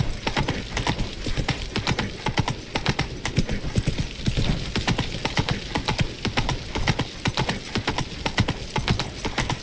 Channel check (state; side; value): identical; both; correlation 1.00